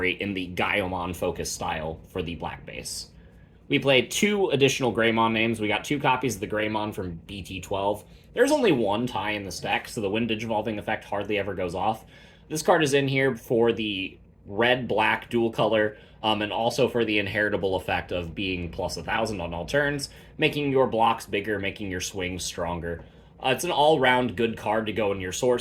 in the Gaiomon focus style for the black base. We played 2 additional Greymon names. We got 2 copies of the Greymon from BT12. There's only 1 tie in this deck, so the Wind Digivolving effect hardly ever goes off. This card is in here for the red-black dual color, and also for the inheritable effect of being plus 1,000 on all turns, making your blocks bigger, making your swings stronger. It's an all-round good card to go in your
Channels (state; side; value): identical; both; correlation 1.00